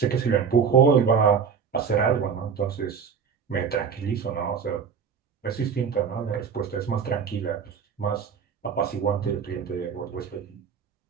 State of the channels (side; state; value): left; quieter; 6.5 dB